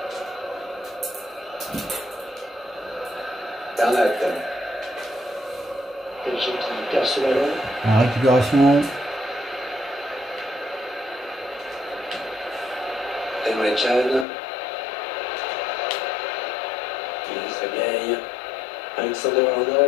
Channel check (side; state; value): right; drops out; at 14.2 s